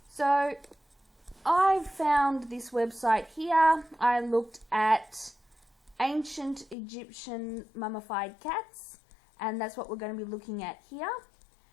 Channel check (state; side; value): drops out; right; at 6.8 s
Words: So I found this website here. I looked at ancient Egyptian mummified cats, and that's what we're going to be looking at here.